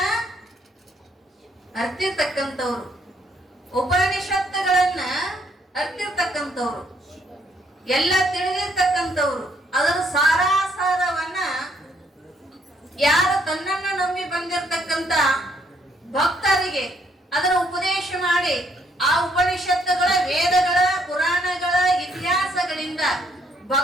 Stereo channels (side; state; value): both; normal; correlation 0.70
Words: ಅರ್ತಿರ್ತಕ್ಕಂಥವ್ರು, ಉಪನಿಷತ್ತುಗಳನ್ನ ಅರ್ತಿರ್ತಕ್ಕಂಥವ್ರು, ಎಲ್ಲ ತಿಳಿದಿರ್ತಕ್ಕಂಥವ್ರು. ಅದರ ಸಾರಾಸಾರವನ್ನ ಯಾರು ತನ್ನನ್ನ ನಂಬಿ ಬಂದಿರತಕ್ಕಂತ ಭಕ್ತರಿಗೆ ಅದರ ಉಪದೇಶ ಮಾಡಿ, ಆ ಉಪನಿಷತ್ತುಗಳ, ವೇದಗಳ, ಪುರಾಣಗಳ ಇತಿಹಾಸಗಳಿಂದ